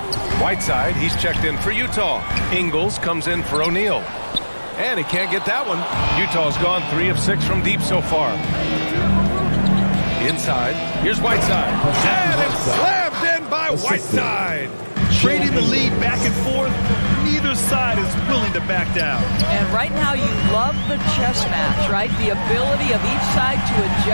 Whiteside, he's checked in for Utah. Ingles comes in for O'Neal. And he can't get that one. Utah's gone 3 of 6 from deep so far. Inside, here's Whiteside. And it's slammed in by Whiteside. Trading the lead back and forth, neither side is willing to back down. And right now you love the chess match, right? The ability of each side to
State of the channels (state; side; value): inverted; both; correlation -1.00